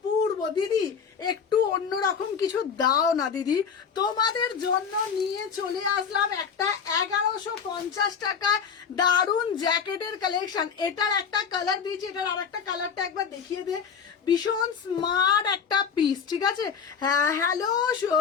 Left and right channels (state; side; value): quieter; right; 6.6 dB